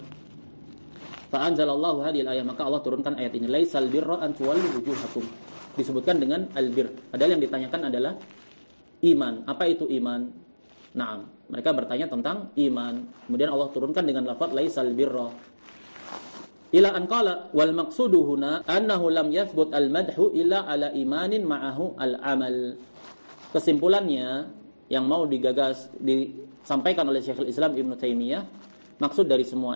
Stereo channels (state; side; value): inverted; both; correlation -1.00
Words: Fa anzalallahu hadhil ayat, maka Allah turunkan ayat ini, laisal birra an tuwallu wujuhakum. Disebutkan dengan albir. Padahal yang ditanyakan adalah iman. Apa itu iman? Naam, mereka bertanya tentang iman. Kemudian Allah turunkan dengan lafaz laisal birra. Ila an qala wal maqsudu huna annahu lam yathbut al madhu illa ala imanin ma'ahu al amal. Kesimpulannya yang mau disampaikan oleh Syekhul Islam Ibnu Taimiyah, maksud dari semua